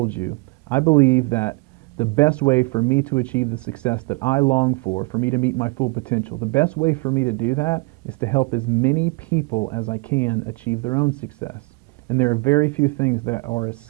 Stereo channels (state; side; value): quieter; left; 28.1 dB